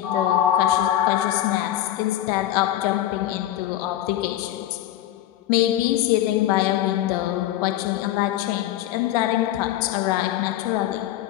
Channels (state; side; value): quieter; right; 13.0 dB